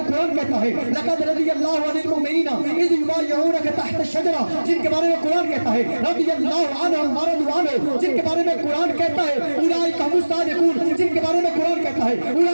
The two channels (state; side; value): inverted; both; correlation -1.00